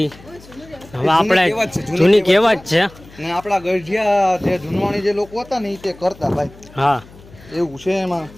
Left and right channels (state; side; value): noise; left; hum, 22 dB below the sound